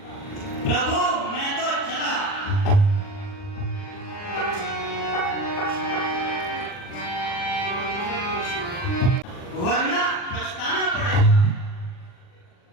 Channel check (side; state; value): right; late; 40 ms